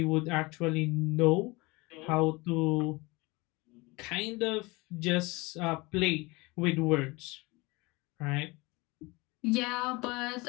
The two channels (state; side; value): quieter; right; 24.3 dB